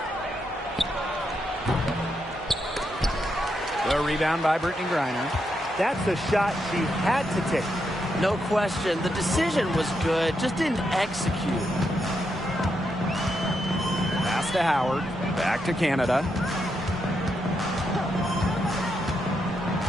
The rebound by Brittany Griner. That's a shot she had to take. No question. The decision was good, just didn't execute. Pass to Howard. Back to Canada.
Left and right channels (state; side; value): normal; both; correlation 0.82